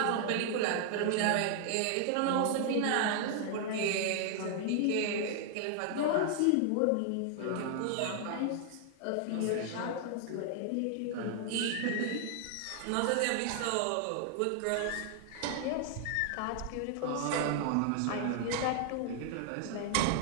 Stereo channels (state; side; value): different; both; correlation 0.00